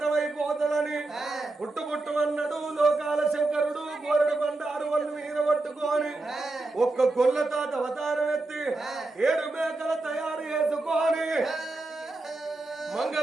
పుట్టుబుట్టుమన్నాడు లోకాల శంకరుడు గోరడు బండారు వాళ్ళు మీద పట్టుకొని ఒక్క గొల్ల తాత అవతారం ఎత్తి 7 మేకల తయారు చేసుకొని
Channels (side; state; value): left; quieter; 3.1 dB